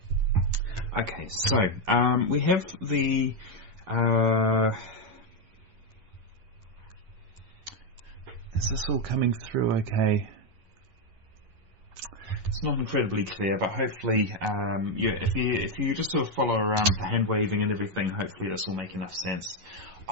Okay, so we have the is this all coming through okay? It's not incredibly clear, but hopefully, if you just sort of follow around the hand waving and everything, hopefully this will make enough sense.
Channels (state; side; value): late; left; 11 ms